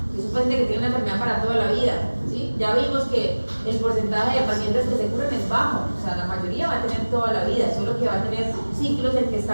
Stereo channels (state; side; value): inverted; both; correlation -1.00